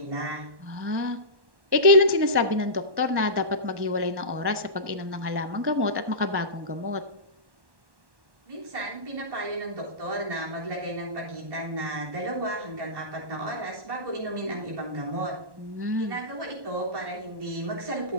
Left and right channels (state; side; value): late; left; 1.1 ms